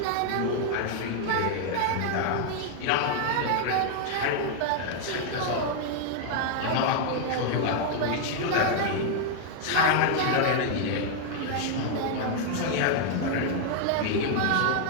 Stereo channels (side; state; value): both; different; correlation 0.00